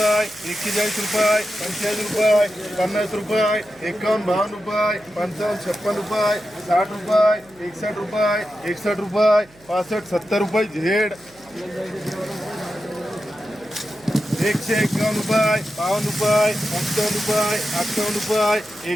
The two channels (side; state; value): right; noise; hum, 28 dB below the sound